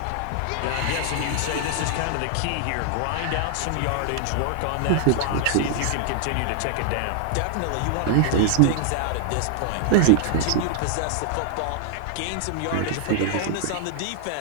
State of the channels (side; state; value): both; different; correlation 0.00